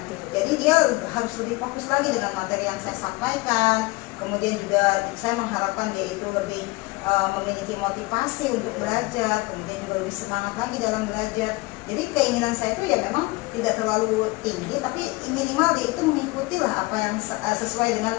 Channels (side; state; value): right; quieter; 23.1 dB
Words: Jadi dia harus lebih fokus lagi dengan materi yang saya sampaikan. Kemudian juga saya mengharapkan dia itu lebih memiliki motivasi untuk belajar, kemudian juga lebih semangat lagi dalam belajar. Jadi keinginan saya itu ya memang tidak terlalu tinggi, tapi minimal dia itu mengikuti lah apa yang sesuai dengan